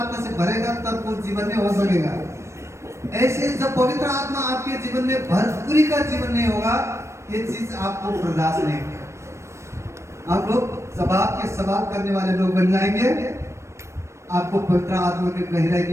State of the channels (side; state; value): left; late; 0.13 ms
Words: से भरेगा तब वो जीवन में हो सकेगा। ऐसे जब पवित्र आत्मा आपके जीवन में भरपूरी का जीवन नहीं होगा, ये चीज आपको बर्दाश्त नहीं होगा। आप लोग सवाल करने वाले लोग बन जाएंगे। आपको पवित्र आत्मा के गहराई